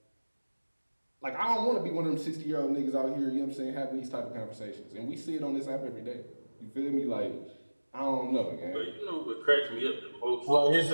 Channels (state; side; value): inverted; both; correlation -1.00